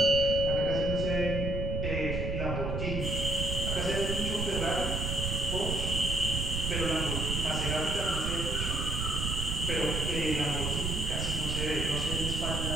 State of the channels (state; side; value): noise; right; rumble, 1 dB below the sound